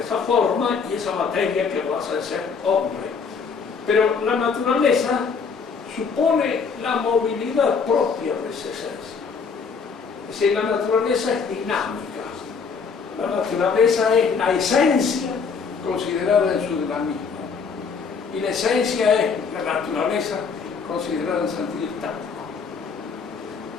forma y esa materia que lo hace ser hombre. Pero la naturaleza supone la movilidad propia de esa esencia. Es decir, la naturaleza es dinámica. La naturaleza es la esencia considerada en su dinamismo. Y la esencia es la naturaleza considerada en sentido estático.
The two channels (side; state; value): right; quieter; 5.6 dB